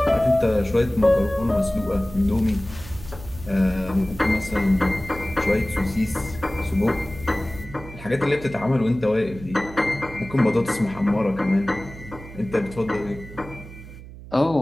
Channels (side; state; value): right; noise; hum, 15 dB below the sound